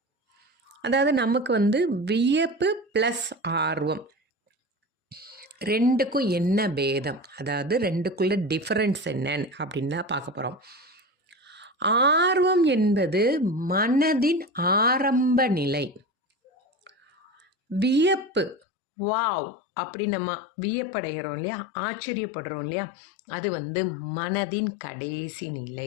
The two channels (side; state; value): right; drops out; at 18.6 s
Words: அதாவது நமக்கு வியப்பு ப்ளஸ் ஆர்வம், ரெண்டுக்கும் என்ன பேதம், அதாவது ரெண்டுக்குள்ள டிஃபரன்ஸ் என்னன்னு அப்படின்னு தான் பார்க்க போகிறோம். ஆர்வம் என்பது மனதின் ஆரம்ப நிலை. வியப்பு, வாவ் அப்படி நம்ம வியப்படைகிறோம் இல்லையா, ஆச்சரியப்படுறோம் இல்லையா, அது மனதின் கடைசி